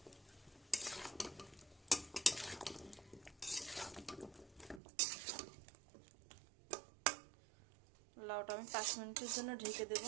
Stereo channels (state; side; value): drops out; left; at 4.8 s